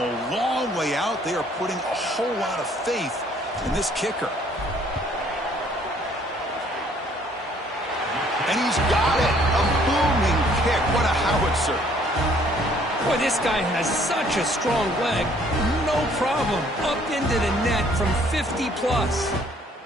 long way out. They are putting a whole lot of faith in this kicker. And he's got it. A booming kick. What a howitzer. Boy, this guy has such a strong leg. No problem. Up into the net from 50 plus.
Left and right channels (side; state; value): both; normal; correlation 0.61